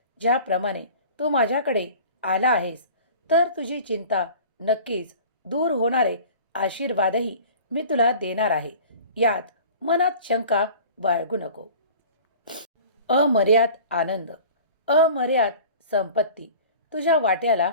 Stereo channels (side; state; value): both; inverted; correlation -0.42